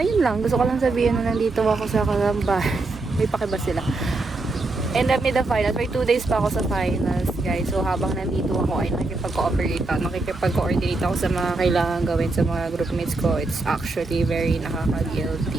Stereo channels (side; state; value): left; quieter; 3.3 dB